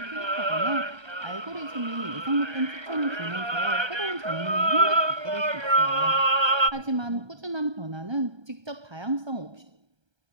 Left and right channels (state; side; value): late; left; 1.3 ms